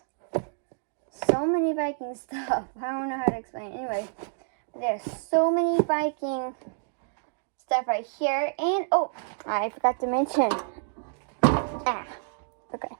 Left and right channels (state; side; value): silent; left; digital silence